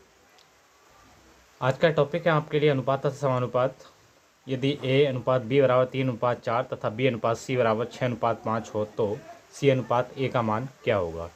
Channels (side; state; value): both; identical; correlation 1.00